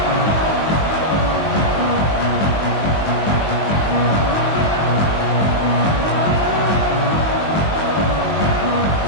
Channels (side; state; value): right; late; 19 ms